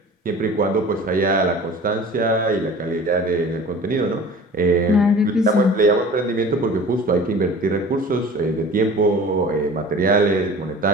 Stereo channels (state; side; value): normal; both; correlation 0.42